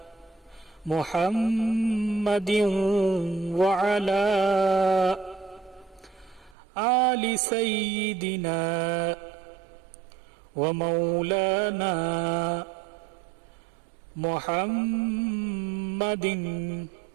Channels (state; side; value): drops out; left; at 6.6 s